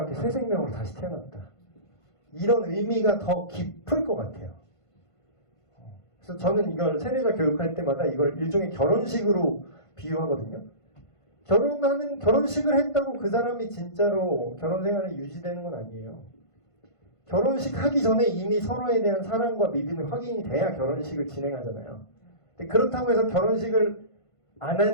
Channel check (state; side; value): late; right; 1.5 ms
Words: 함께 새 생명으로 다시 태어났다. 이런 의미가 더 깊을 것 같아요. 그래서 저는 이걸 세례자 교육할 때마다 이걸 일종의 결혼식으로 비유하거든요. 결혼식을 했다고 그 사람이 진짜로 결혼 생활이 유지되는 건 아니에요. 결혼식 하기 전에 이미 서로에 대한 사랑과 믿음이 확인이 돼야 결혼식을 진행하잖아요. 근데 그렇다고 해서 결혼식을 안